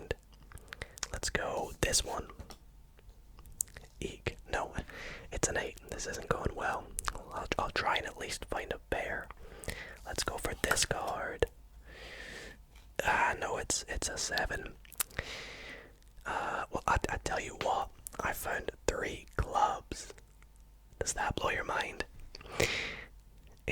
Let's go this one. Eek. No, it's an 8. This isn't going well. I'll try and at least find a pair. Let's go for this card. No, it's a 7. Well, I tell you what, I found 3 clubs. Does that blow your mind?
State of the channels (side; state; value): both; identical; correlation 1.00